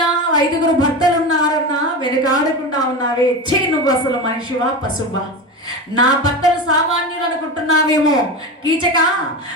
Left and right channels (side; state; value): both; normal; correlation 0.23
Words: 5 భర్తలు ఉన్నారన్నా వెనుకాడకుండా ఉన్నావే. ఛీ, నువ్వు అసలు మనిషివా పశువా? నా భర్తలు సామాన్యులు అనుకుంటున్నావేమో కీచక,